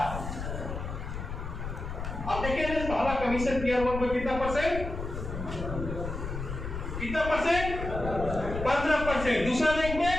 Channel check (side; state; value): left; noise; rumble, 6 dB below the sound